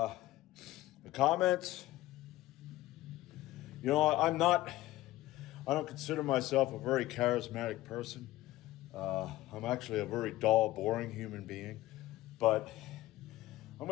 comments. You know, I don't consider myself a very charismatic person. I'm actually a very dull, boring human being, but I'm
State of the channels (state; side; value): quieter; right; 16.5 dB